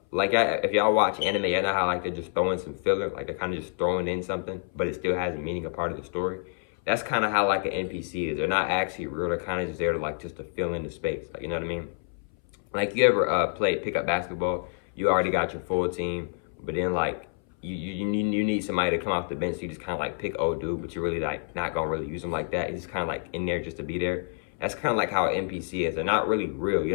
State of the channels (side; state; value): right; silent; 59 dB below the other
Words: if y'all watch anime, you know how like they're just throwing some filler, like they're kind of just throwing in something, but it still has a meaning, a part of the story. That's kind of how like an NPC is. They're not actually real. They're kind of just there to like just to fill in the space. Like, you know what I mean? Like, you ever play pickup basketball? You already got your full team, but then like you need somebody to come off the bench. So you just kind of like pick old dude, but you're really like not gonna really use them like that. He's just kind of like in there just to be there. That's kind of like how an NPC is. They're not really real. You